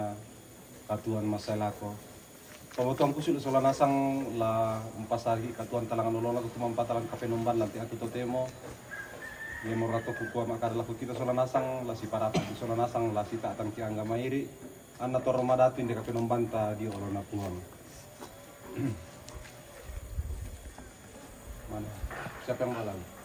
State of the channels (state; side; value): identical; both; correlation 1.00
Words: katuan masalako pamotong kusul sola nasang la umpasagi katuan talangan nolona ko tumampatalan kapenumban lanti atu totemo Nemo rato kukua makar laku kita sola nasang la si parata di sola nasang la si taatan ki angga mairi anna toro madatu inde kapenombanta di olona puang. Mana? Siapa yang malam?